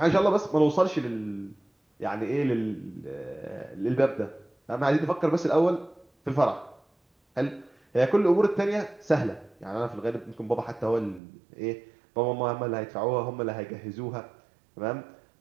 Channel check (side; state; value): left; drops out; at 11.2 s